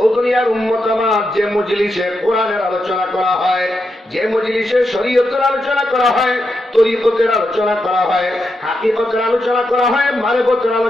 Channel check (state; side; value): normal; both; correlation 0.85